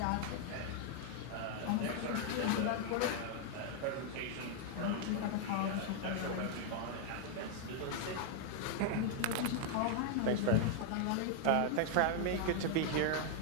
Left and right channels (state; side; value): different; both; correlation 0.00